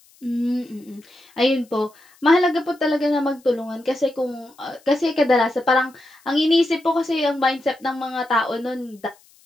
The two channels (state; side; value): noise; left; hiss, 30 dB below the sound